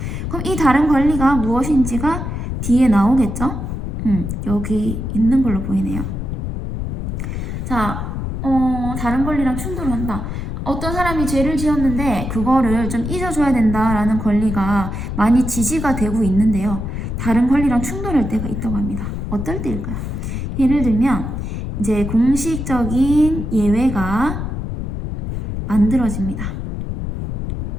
그럼 이 다른 권리가 무엇인지가 뒤에 나오겠죠? 여기 있는 걸로 보이네요. 자, 다른 권리랑 충돌한다. 어떤 사람이 죄를 지었는데 그거를 좀 잊어줘야 된다라는 권리가 많이 지지가 되고 있는데요. 다른 권리랑 충돌할 때가 있다고 합니다. 어떨 때일까요? 예를 들면 이제 공식적인 예외가 만들어지는데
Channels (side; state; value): left; noise; rumble, 4 dB below the sound